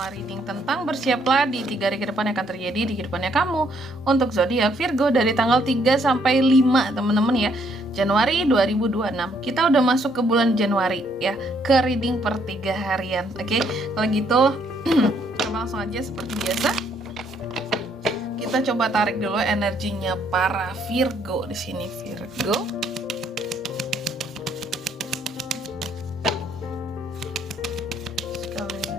reading tentang bersiaplah di 3 hari ke depan yang akan terjadi di kehidupannya kamu untuk zodiak Virgo dari tanggal 3 sampai 5 teman-teman ya, Januari 2026. Kita udah masuk ke bulan Januari ya, ke reading per 3 harian. Oke, kalau gitu kita langsung aja seperti biasa. Kita coba tarik dulu energinya para Virgo di sini. Virgo.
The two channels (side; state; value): both; normal; correlation 0.69